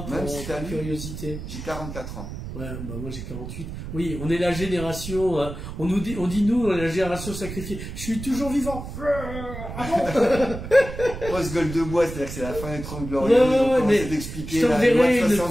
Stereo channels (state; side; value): noise; right; rumble, 9 dB below the sound